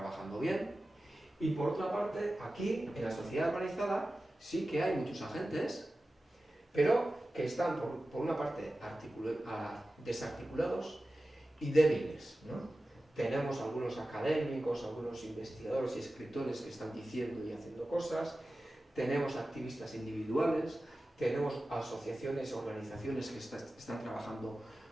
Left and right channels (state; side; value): normal; both; correlation 0.95